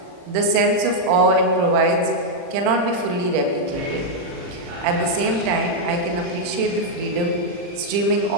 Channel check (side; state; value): left; late; 40 ms